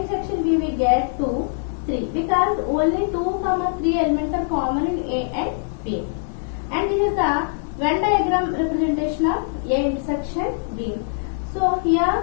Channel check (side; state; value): right; silent; 64 dB below the other